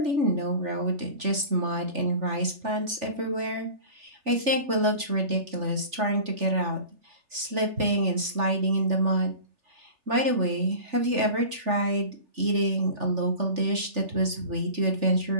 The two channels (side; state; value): left; late; 3.4 ms